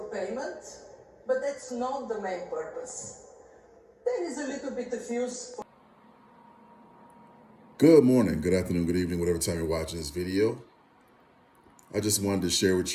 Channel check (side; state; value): both; identical; correlation 1.00